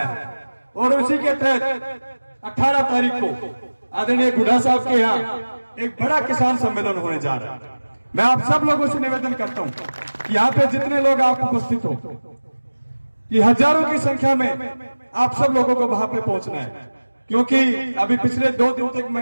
है और उसी के तहत 18 तारीख को आदरणीय बुढ़ा साहब के यहाँ एक बड़ा किसान सम्मेलन होने जा रहा है। मैं आप सब लोगों से निवेदन करता हूं कि यहाँ पे जितने लोग आप उपस्थित हो, कि हजारों की संख्या में आप सब लोगों को वहां पे पहुंचना है, क्योंकि अभी पिछले 2 दिन तक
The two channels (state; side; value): inverted; both; correlation -1.00